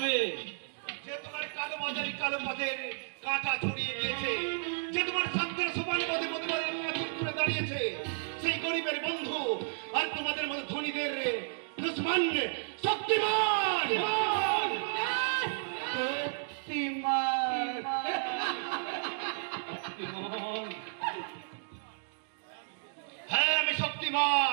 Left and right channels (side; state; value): left; silent; digital silence